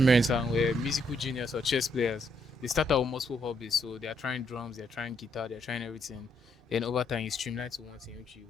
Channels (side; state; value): both; normal; correlation 0.74